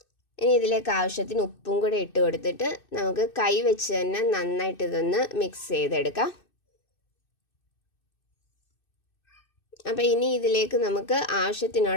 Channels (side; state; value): right; late; 2.6 ms